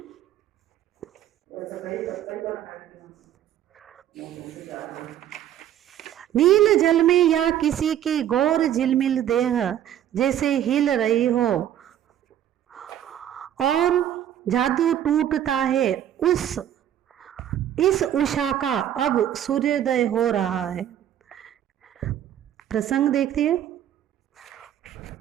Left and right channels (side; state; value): left; quieter; 10.9 dB